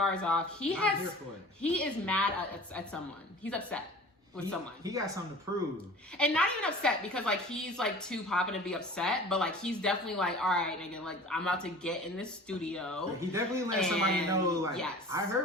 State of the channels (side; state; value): both; normal; correlation 0.42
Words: off. He is mad at someone. He's upset with someone. He got something to prove. And not even upset because like he's like too poppin' to be upset, but like he's definitely like, all right, nigga, like I'm about to get in this studio. He definitely let somebody know, like, yes. I